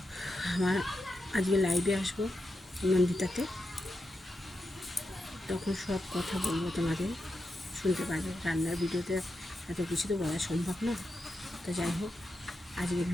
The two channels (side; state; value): both; normal; correlation 0.88